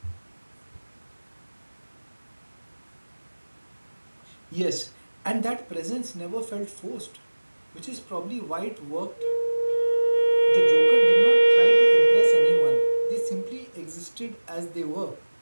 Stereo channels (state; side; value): inverted; both; correlation -1.00